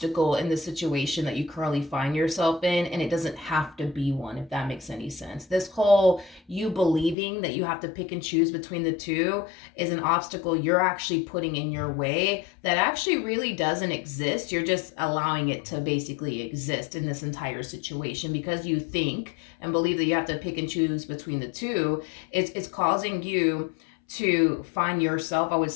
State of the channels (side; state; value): right; drops out; at 7.2 s